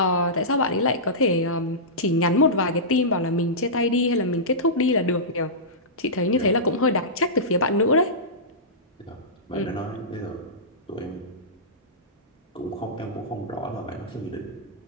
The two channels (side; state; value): both; normal; correlation -0.17